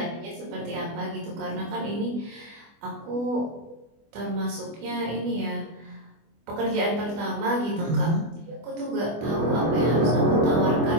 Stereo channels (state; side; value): late; left; 24 ms